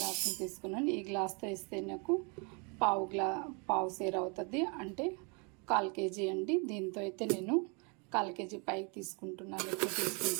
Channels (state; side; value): quieter; left; 33.6 dB